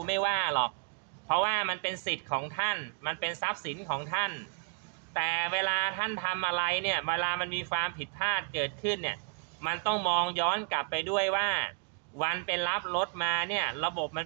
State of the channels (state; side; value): quieter; left; 37.6 dB